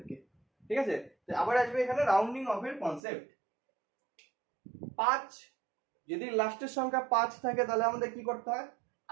ঠিক আছে। তো আবার আসবে এখানে রাউন্ডিং অফ এর কনসেপ্ট। 5 যদি লাস্টের সংখ্যা 5 থাকে তাহলে আমাদের কি করতে হয়,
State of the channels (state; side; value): drops out; left; at 3.0 s